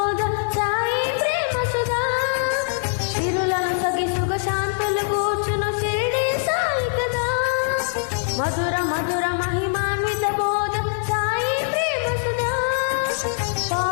సాయి ప్రేమ సుధా సిరులను సగి సుగ శాంతులు కూర్చును షిరిడి సాయి కదా మధుర మధుర మహిమాన్విత బోధ సాయి ప్రేమ సుధా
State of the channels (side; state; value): right; silent; 56 dB below the other